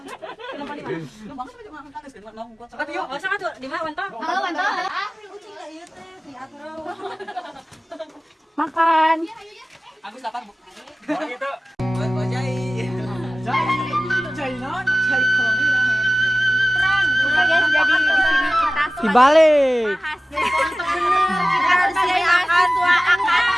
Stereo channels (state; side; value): normal; both; correlation 0.97